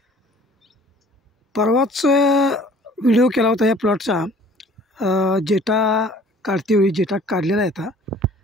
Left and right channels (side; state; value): both; normal; correlation 0.51